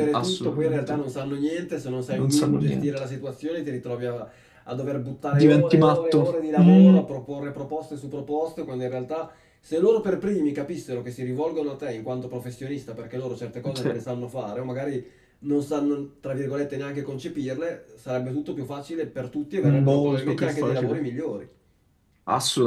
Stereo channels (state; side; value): identical; both; correlation 1.00